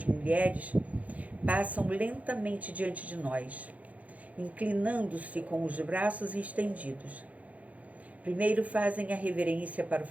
mulheres, passam lentamente diante de nós, inclinando-se com os braços estendidos. Primeiro fazem a reverência para o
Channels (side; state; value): left; late; 0.071 ms